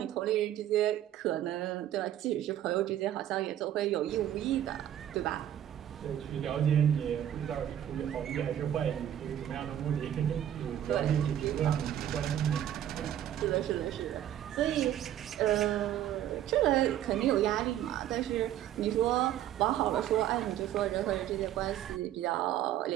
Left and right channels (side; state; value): left; quieter; 11.4 dB